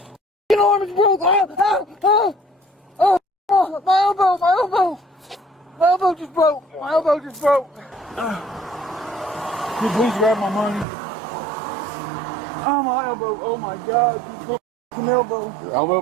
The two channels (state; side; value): drops out; left; at 10.9 s